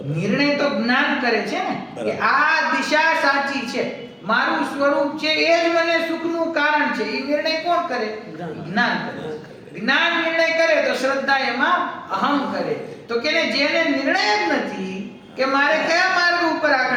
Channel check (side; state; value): both; identical; correlation 1.00